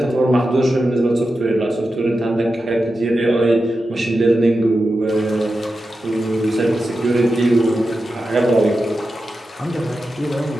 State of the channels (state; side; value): normal; both; correlation 0.91